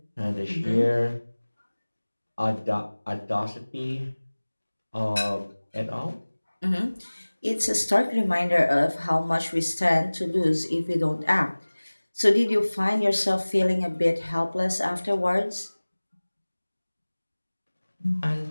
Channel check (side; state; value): both; inverted; correlation -1.00